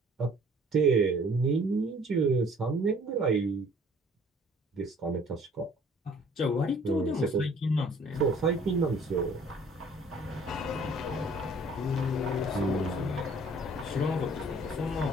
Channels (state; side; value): normal; both; correlation 0.55